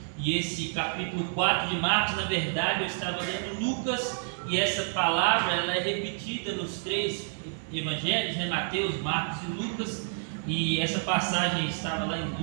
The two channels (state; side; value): silent; left; digital silence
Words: e esse capítulo 4 de Marcos, na verdade eu estava lendo Lucas, e essa palavra ela é repetida nos 3 evangelhos, né? Mateus, Marcos e Lucas, e essa passagem estava lá em